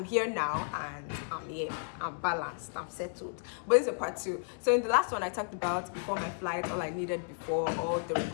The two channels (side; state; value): right; silent; digital silence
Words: here now and I'm here, I'm balanced, I'm settled. But this is a part 2. So in the last one I talked about before my flight, all I needed before, all the